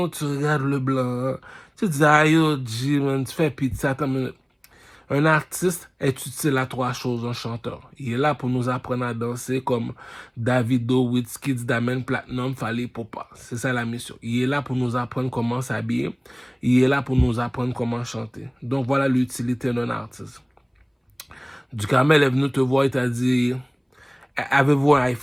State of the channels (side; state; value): both; identical; correlation 1.00